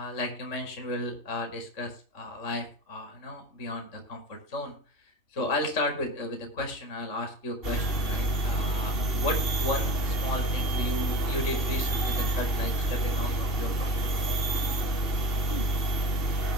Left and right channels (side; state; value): right; late; 2.7 ms